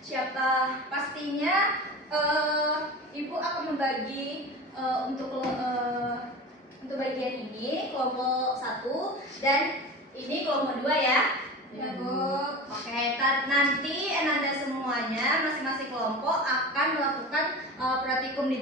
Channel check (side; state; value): both; normal; correlation 0.32